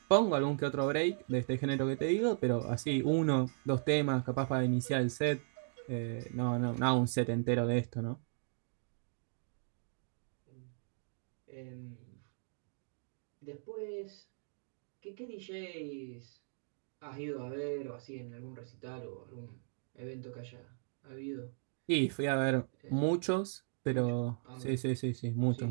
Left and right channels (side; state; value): left; silent; digital silence